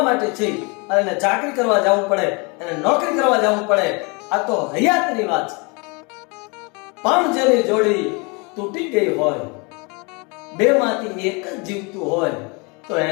માટે છે અને એને ચાકરી કરવા જવું પડે એને નોકરી કરવા જવું પડે આ તો હયાતની વાત છે પણ જેની જોડી તૂટી ગઈ હોય બે માંથી એક જ જીવતું હોય તો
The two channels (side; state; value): right; quieter; 30.2 dB